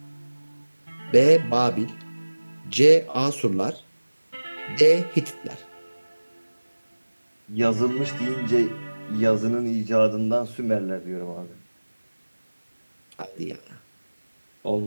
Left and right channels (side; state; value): both; inverted; correlation -1.00